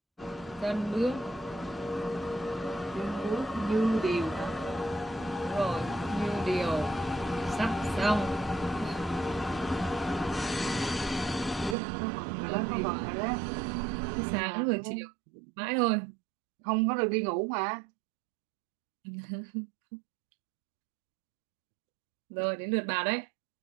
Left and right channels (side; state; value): left; drops out; at 11.8 s